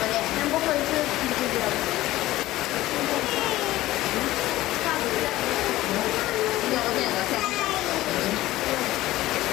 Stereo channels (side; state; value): right; quieter; 16.4 dB